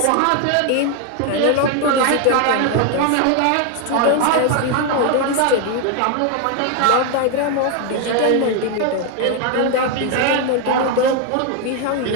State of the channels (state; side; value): different; both; correlation 0.01